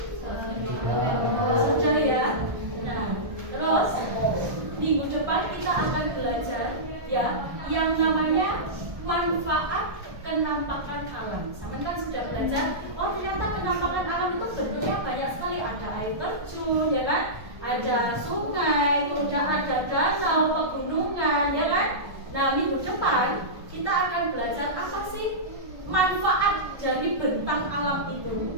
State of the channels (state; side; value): late; left; 1.2 ms